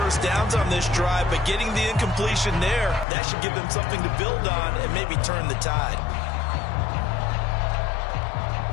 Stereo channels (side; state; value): right; drops out; at 3.1 s